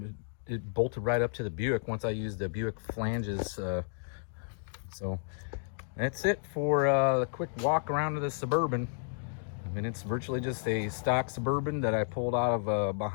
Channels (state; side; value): silent; right; digital silence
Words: It bolted right up to the Buick once I used the Buick flanges. So that's it for the quick walk around of the Suburban. I mean, it's virtually just a stock Suburban that I pulled out of